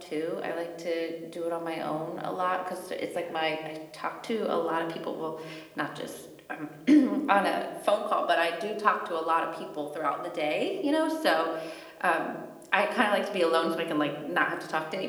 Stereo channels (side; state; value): both; identical; correlation 1.00